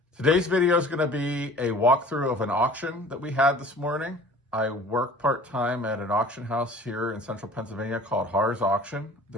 Today's video is going to be a walkthrough of an auction that we had this morning. I work part-time at an auction house here in central Pennsylvania called Haar's Auction.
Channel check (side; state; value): both; normal; correlation 0.46